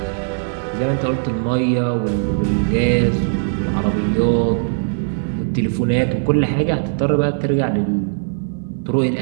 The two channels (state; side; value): silent; left; 66 dB below the other